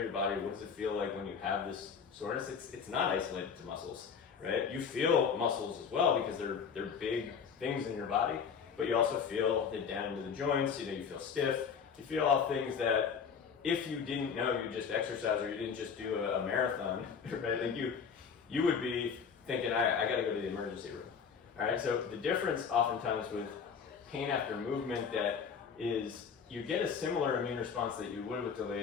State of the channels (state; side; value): quieter; right; 6.5 dB